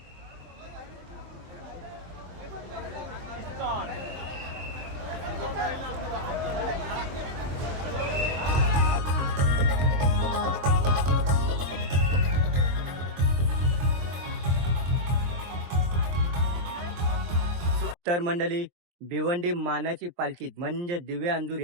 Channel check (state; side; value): late; left; 23 ms